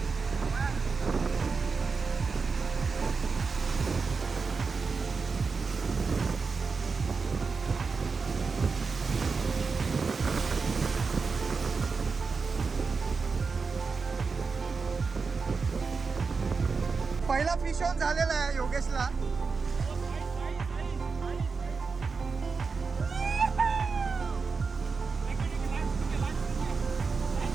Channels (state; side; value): quieter; left; 4.8 dB